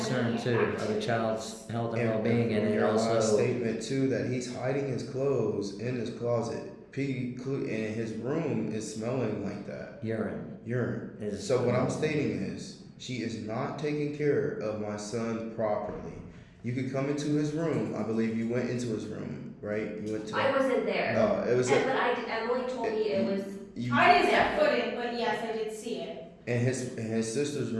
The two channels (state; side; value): identical; both; correlation 1.00